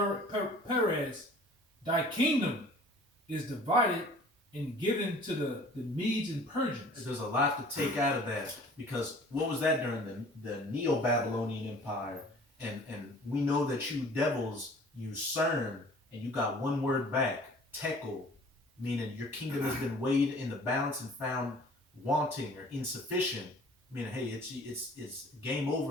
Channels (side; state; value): both; normal; correlation 0.49